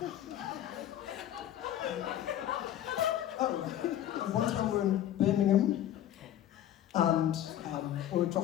One time we were in Birmingham, and we were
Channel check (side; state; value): right; quieter; 11.8 dB